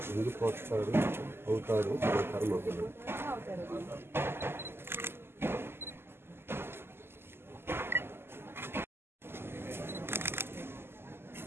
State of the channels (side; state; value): left; late; 0.12 ms